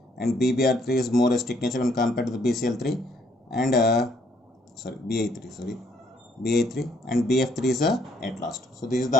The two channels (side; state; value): both; normal; correlation 0.67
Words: and BBr3 is more acidic nature when compared to the BCl3, and BA3 and BF3 is at last. So this is